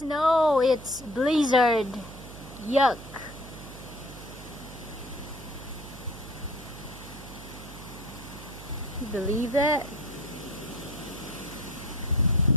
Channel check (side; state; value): right; noise; hum, 14 dB below the sound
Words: It's blizzard. Yuck. You believe that?